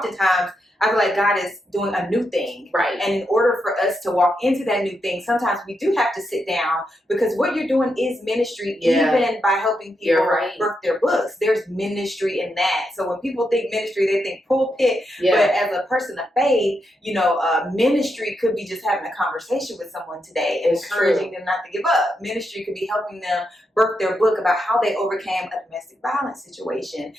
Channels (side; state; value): both; normal; correlation 0.83